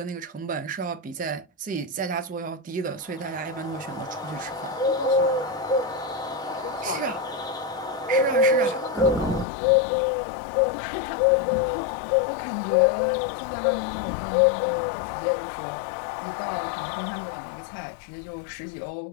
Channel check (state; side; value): drops out; right; at 9.5 s